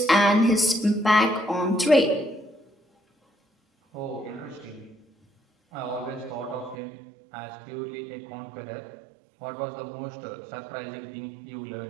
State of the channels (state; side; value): drops out; left; at 6.8 s